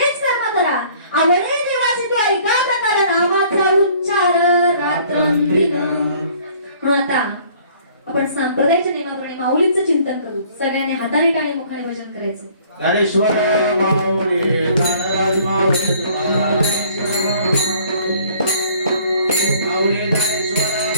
कर्म करा. आवडेल देवाचे तो ऐका प्रकार नामाचा उच्चार रात्रंदिन. म्हणून आता आपण सांप्रदायिक नियमाप्रमाणे माऊलीचं चिंतन करू. सगळ्यांनी हाताने टाळी मुखाने भजन करायचं. ज्ञानेश्वर माऊली ज्ञानराज माऊली तुकाराम माऊली ज्ञानेश्वर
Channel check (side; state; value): both; inverted; correlation -0.56